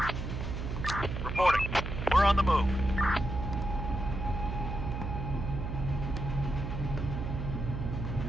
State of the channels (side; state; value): right; noise; hum, 4 dB below the sound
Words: Reporting. We're on the move.